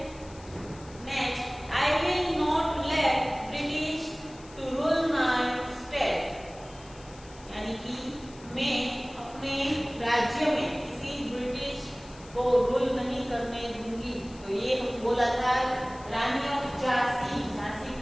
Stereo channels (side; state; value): left; noise; hiss, 22 dB below the sound